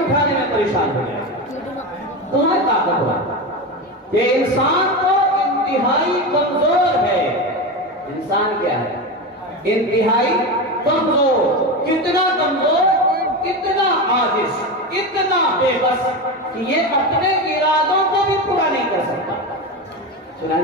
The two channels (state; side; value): normal; both; correlation 0.20